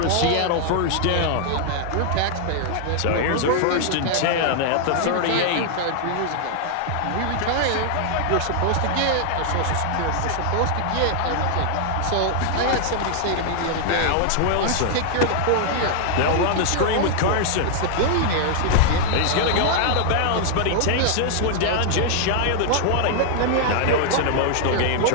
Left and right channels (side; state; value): both; different; correlation -0.01